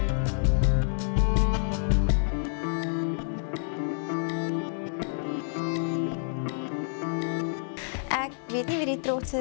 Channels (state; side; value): silent; right; digital silence